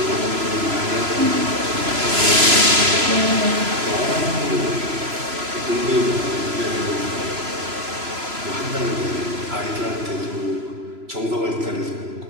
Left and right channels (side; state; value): left; late; 3.0 ms